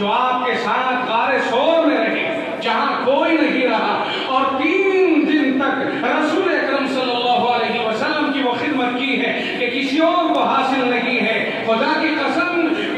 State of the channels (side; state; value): both; identical; correlation 1.00